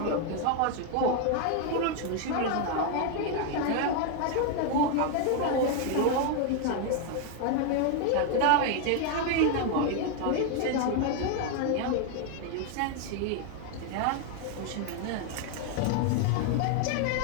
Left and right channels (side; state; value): both; different; correlation 0.01